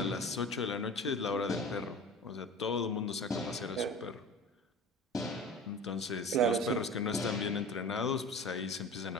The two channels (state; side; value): normal; both; correlation 0.37